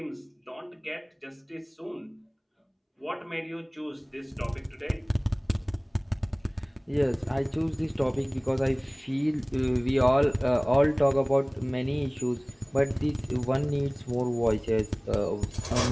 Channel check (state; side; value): identical; both; correlation 1.00